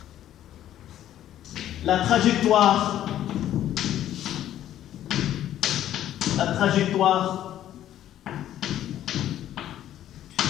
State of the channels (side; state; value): right; quieter; 11.9 dB